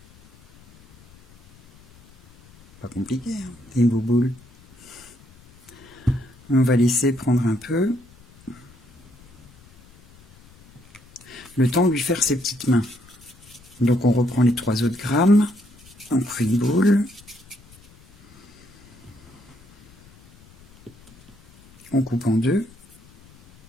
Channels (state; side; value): noise; left; rumble, 26 dB below the sound